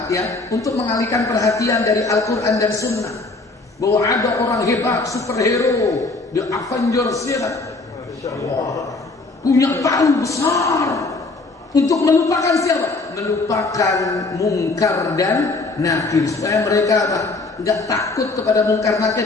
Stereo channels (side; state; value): right; quieter; 3.5 dB